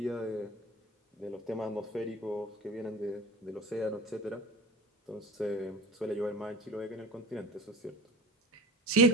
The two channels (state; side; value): normal; both; correlation 0.36